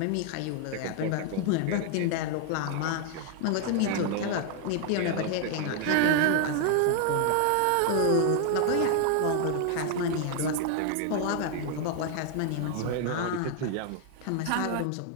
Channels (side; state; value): both; different; correlation 0.00